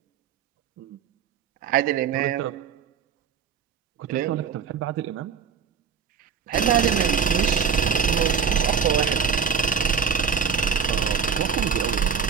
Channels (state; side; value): quieter; left; 6.5 dB